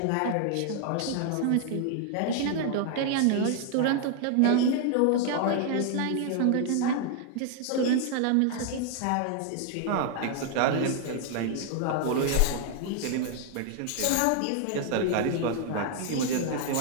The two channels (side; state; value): both; different; correlation 0.00